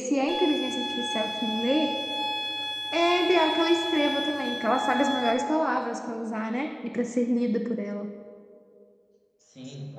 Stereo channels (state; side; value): identical; both; correlation 1.00